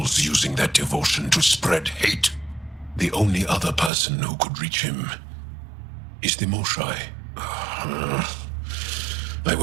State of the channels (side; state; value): left; drops out; at 3.9 s